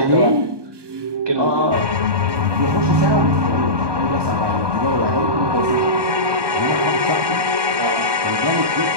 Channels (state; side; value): late; left; 1.2 ms